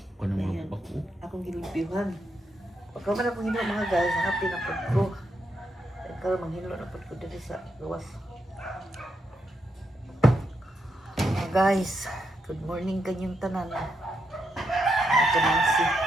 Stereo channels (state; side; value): normal; both; correlation 0.81